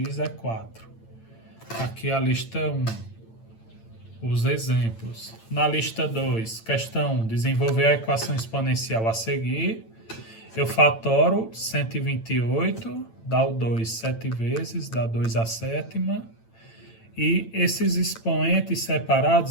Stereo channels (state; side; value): late; right; 8.9 ms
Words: é 4. Aqui a lista 1. Os exemplos. Na lista 2, questão 1, desenvolver a equação exponencial a seguir. Eu fatoro 128, dá o 2 7 vezes, dá 2 à sétima. E esses expoentes